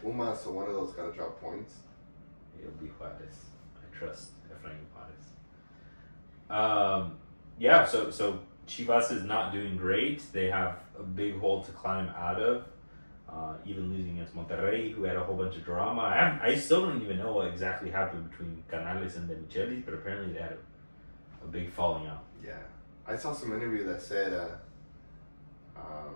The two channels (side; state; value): both; inverted; correlation -1.00